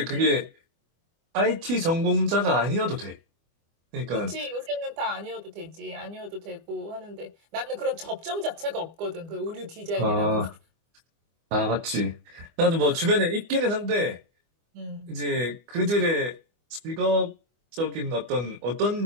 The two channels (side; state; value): left; late; 24 ms